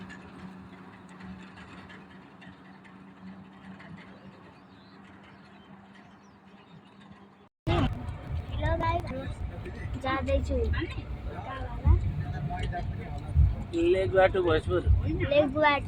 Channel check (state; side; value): identical; both; correlation 1.00